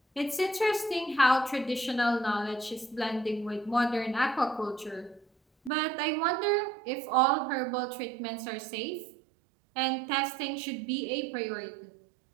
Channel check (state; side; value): drops out; left; at 5.7 s